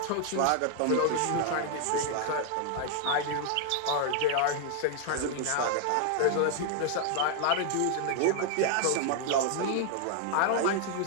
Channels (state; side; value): different; both; correlation 0.00